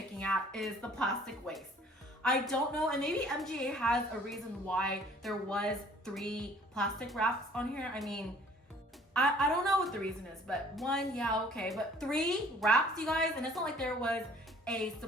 at is the plastic waste. I don't know, and maybe MGA has a reason why there was 3 plastic wraps on here. I mean, I don't know what the reason is, but 1, yeah, okay, but 3 wraps, you guys, and it's not like there was a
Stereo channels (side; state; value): both; normal; correlation 0.55